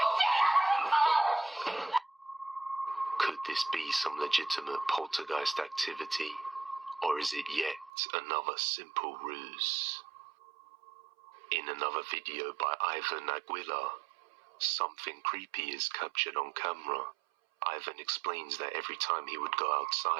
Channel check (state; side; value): drops out; left; at 7.9 s